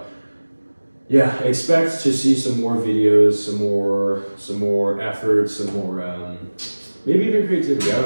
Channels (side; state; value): both; inverted; correlation -1.00